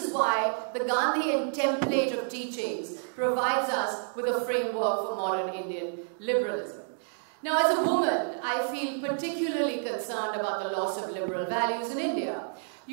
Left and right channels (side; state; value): left; silent; digital silence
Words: why the Gandhian template of teachings provides us with a framework for modern Indian liberalism. Now, as a woman, I feel particularly concerned about the loss of liberal values in India.